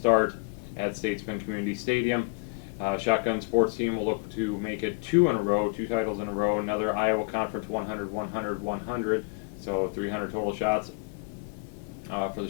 at Statesman Community Stadium. Shotgun sports team will look to make it 2 titles in a row, another Iowa Conference 100, 100, 100, so 300 total shots for the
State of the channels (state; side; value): quieter; right; 32.3 dB